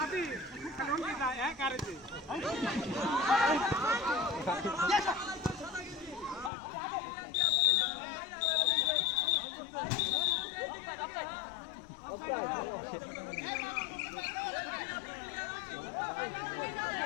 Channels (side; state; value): right; drops out; at 6.5 s